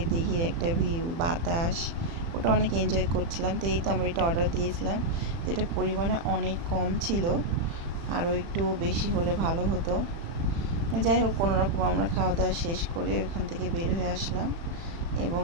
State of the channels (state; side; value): late; left; 36 ms